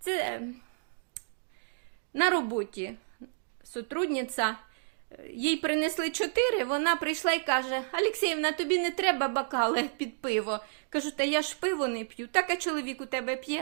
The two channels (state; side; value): silent; left; digital silence